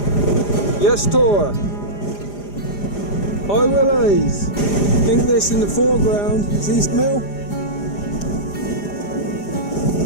Yes, Tor. Hi, Willies. I think this in the foreground is East Mill.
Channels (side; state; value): right; late; 4.9 ms